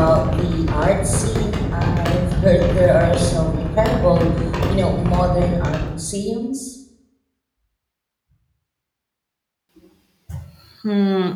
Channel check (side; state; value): both; identical; correlation 1.00